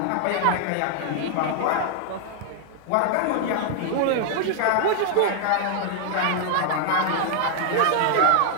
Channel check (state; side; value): different; both; correlation 0.00